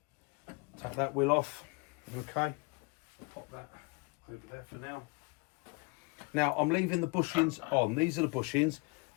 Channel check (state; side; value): quieter; right; 28.5 dB